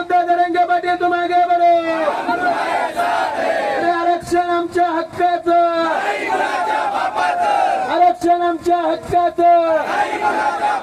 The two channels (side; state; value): both; identical; correlation 1.00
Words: जरांगे पाटील तुम आगे बढ़ो. आरक्षण आमच्या हक्काचं, आरक्षण आमच्या हक्काचं.